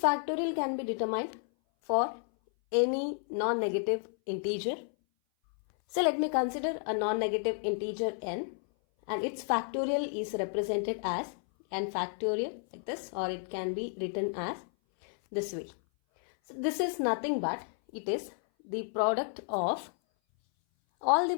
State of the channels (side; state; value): right; silent; 57 dB below the other